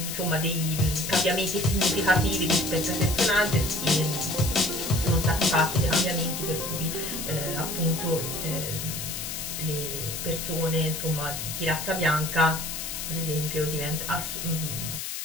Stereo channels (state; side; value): noise; left; hiss, 5 dB below the sound